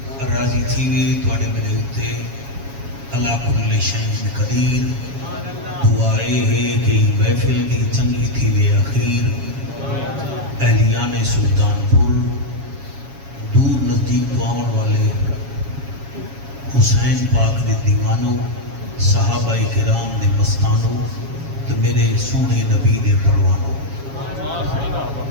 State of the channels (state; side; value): late; left; 7.3 ms